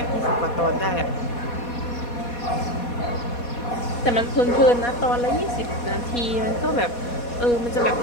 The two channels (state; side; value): late; right; 4.2 ms